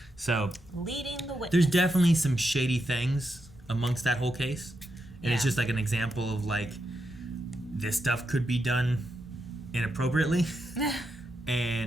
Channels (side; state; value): both; normal; correlation 0.84